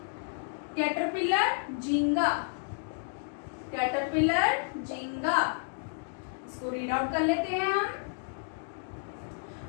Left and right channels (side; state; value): right; silent; digital silence